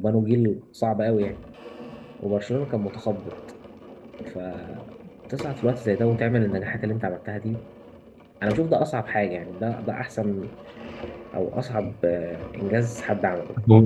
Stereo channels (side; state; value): both; identical; correlation 1.00